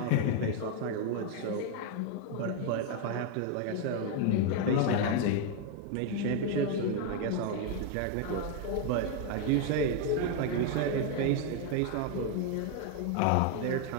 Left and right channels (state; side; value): different; both; correlation 0.01